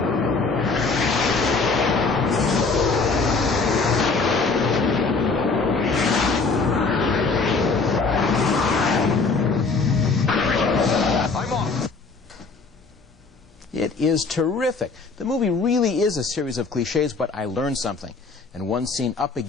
It is terrific. The movie really is a series of cliches, but I learned something. And one scene up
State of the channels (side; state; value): right; quieter; 4.2 dB